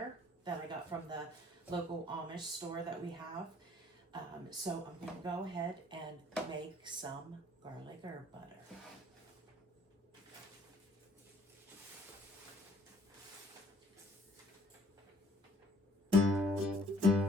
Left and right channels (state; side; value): normal; both; correlation 0.60